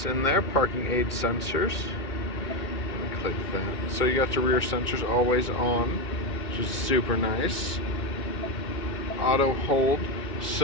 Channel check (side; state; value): right; late; 2.2 ms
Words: in there, parking aid sensors. Let me click that. So you got your rear sensors always on, which is super nice. Auto hold,